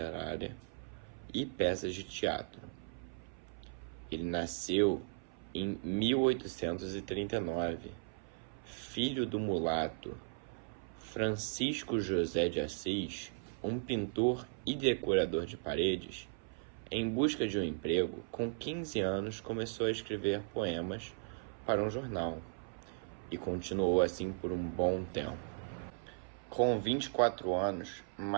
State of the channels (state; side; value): silent; left; 53 dB below the other